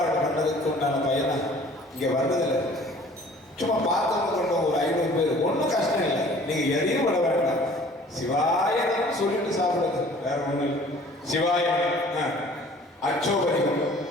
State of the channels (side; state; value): both; normal; correlation 0.51